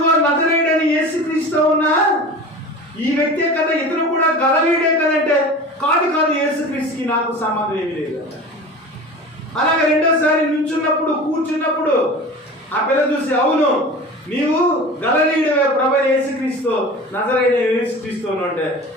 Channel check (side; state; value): both; normal; correlation 0.36